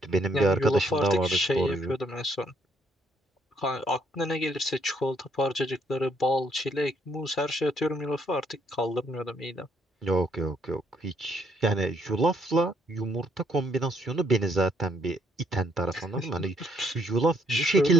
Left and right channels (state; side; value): normal; both; correlation 0.69